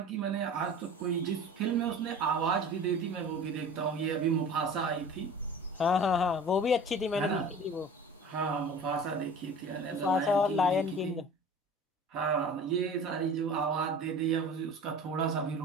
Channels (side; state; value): both; normal; correlation 0.40